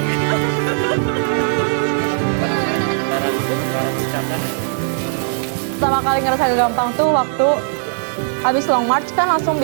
Pertama kali ngerasa gampang tuh waktu habis long march kan langsung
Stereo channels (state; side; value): silent; left; digital silence